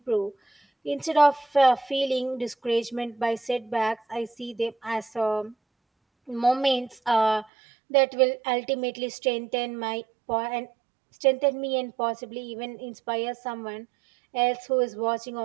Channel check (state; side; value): drops out; left; at 7.5 s